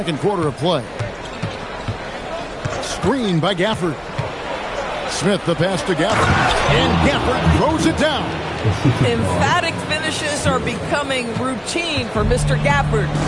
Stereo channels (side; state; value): both; identical; correlation 1.00